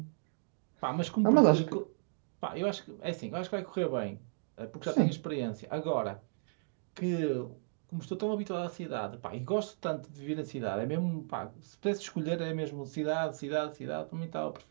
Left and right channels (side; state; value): left; silent; digital silence